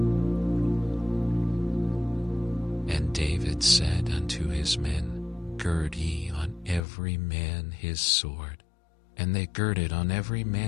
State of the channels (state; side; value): drops out; right; at 6.8 s